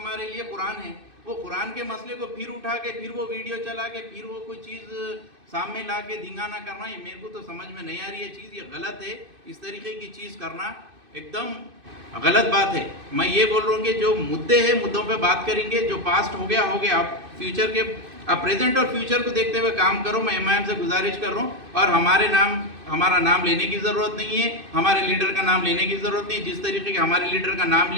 लिए कुरान है, वो कुरान के मसले को फिर उठा के फिर वो वीडियो चला के फिर वो कोई चीज़ सामने ला के धिंगाना करना, ये मेरे को तो समझ में नहीं आ रही है चीज़, ये गलत है। इस तरीके की चीज़ करना एकदम गलत बात है। मैं ये बोल रहा हूँ कि जो मुद्दे हैं मुद्दों पे बात करेंगे, जो पास्ट हो गया हो गया। आप फ्यूचर के, आप प्रेजेंट और फ्यूचर को देखते हुए काम करो। मैं MIM से गुजारिश कर रहा हूँ, और हमारा नाम लेने की ज़रूरत नहीं है, हमारे लीडर का नाम लेने की ज़रूरत नहीं है। जिस तरीके के हमारे लीडर का नाम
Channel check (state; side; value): late; left; 2.6 ms